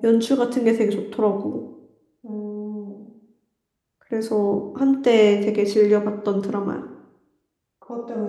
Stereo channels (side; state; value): both; identical; correlation 1.00